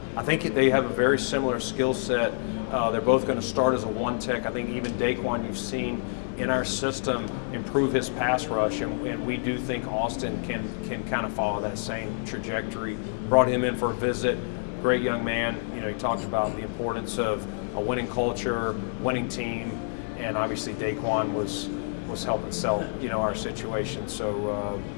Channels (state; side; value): silent; right; digital silence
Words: think they have a very similar skill set. They're both going to start as a one tech. I think even Daquan, you've seen in our system improve his pass rush, and we do think Austin can kind of follow that same trajectory. Brought him in for a visit. Great young man. He talked about the importance of a winning culture, winning team, and obviously Daquan was helping sell our situation. So